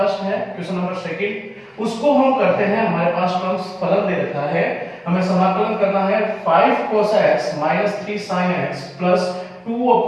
है क्वेश्चन नंबर सेकंड, उसको हम करते हैं। हमारे पास टर्म्स फलन दे रखा है, हमें समाकलन करना है 5 cos x - 3 sin x plus 2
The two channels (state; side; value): identical; both; correlation 1.00